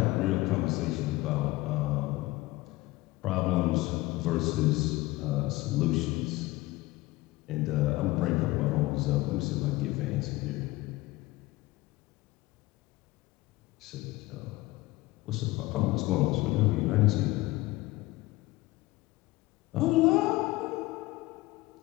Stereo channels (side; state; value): right; quieter; 19.5 dB